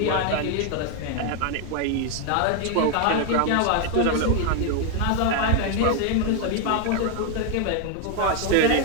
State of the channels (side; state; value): both; different; correlation 0.01